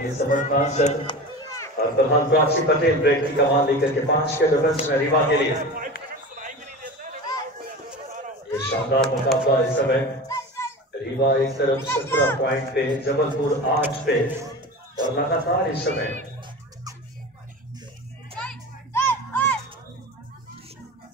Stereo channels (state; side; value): normal; both; correlation 0.31